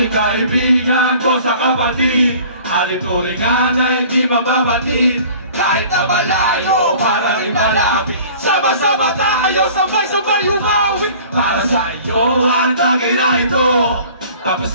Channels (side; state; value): both; inverted; correlation -0.47